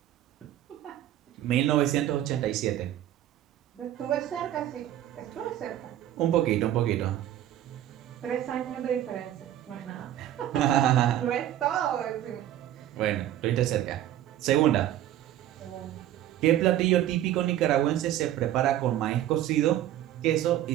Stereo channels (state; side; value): quieter; left; 12.5 dB